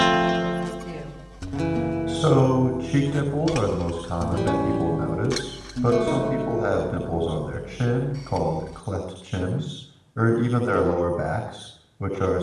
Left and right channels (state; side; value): identical; both; correlation 1.00